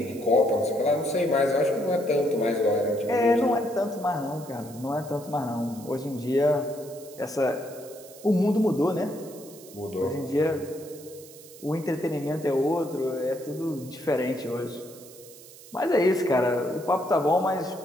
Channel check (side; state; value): right; noise; hiss, 19 dB below the sound